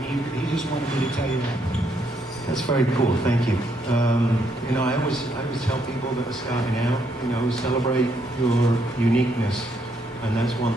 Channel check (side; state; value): both; normal; correlation 0.74